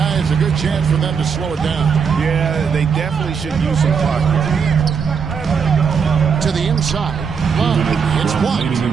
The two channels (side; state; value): left; quieter; 6.3 dB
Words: a good chance for them to slow it down. Yeah, they definitely should use some clock here. To the inside. Love. It's blocked. 2